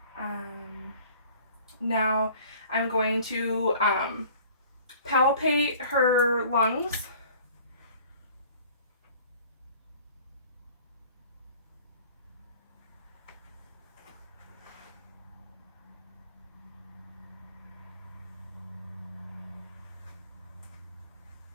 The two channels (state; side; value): inverted; both; correlation -0.49